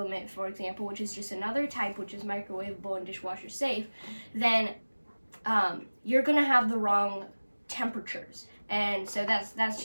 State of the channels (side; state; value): both; inverted; correlation -1.00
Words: for example, which is just another type, which is microwavable and dishwasher safe, then you're going to have the wrong temperatures. And so that's